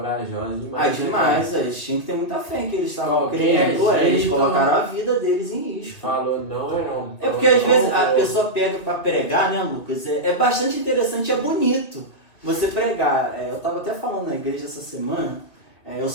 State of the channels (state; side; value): late; right; 2.3 ms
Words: demais. Ah, demais, eles tinham que ter muita fé que eles estavam Qualquer crendo, eles jeito. colocaram a vida deles em risco. Falou não é não. É porque às vezes a pessoa pega pra pregar, né, Lucas? É bastante interessante, é bonito você pregar. Eu tava até falando na igreja essa semana, eu